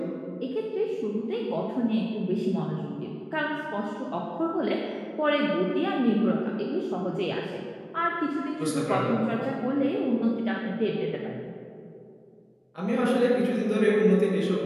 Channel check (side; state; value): both; identical; correlation 1.00